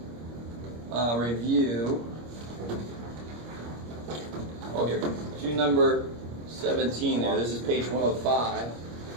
review. Oh, here. Do number 17 there. This is page 105.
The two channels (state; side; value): late; left; 26 ms